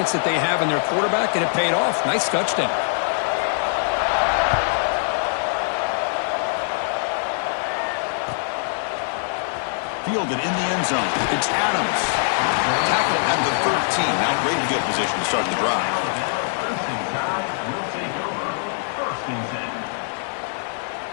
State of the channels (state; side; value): silent; right; digital silence